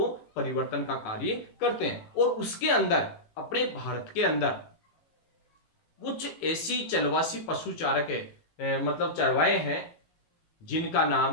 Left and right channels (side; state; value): right; late; 18 ms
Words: परिवर्तन का कार्य करते हैं। और उसके अंदर अपने भारत के अंदर कुछ ऐसी चलवासी पशुचारक मतलब चरवाहे हैं जिनका